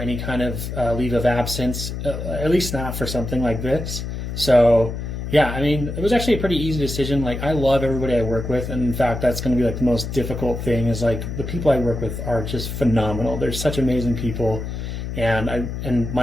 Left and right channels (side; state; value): left; noise; hum, 6 dB below the sound